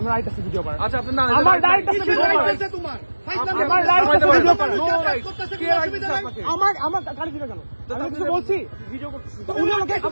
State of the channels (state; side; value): inverted; both; correlation -1.00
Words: রাইট আছে ভিডিও করার। আচ্ছা আপনি না আমার রাইট আছে ভিডিও করার। তোমার আমার রাইট আছে ভিডিও করার। আমার আমার গালি দিবে কেন? আমি কিছু বলছি ভিডিও করতেছি। উনি আমাকে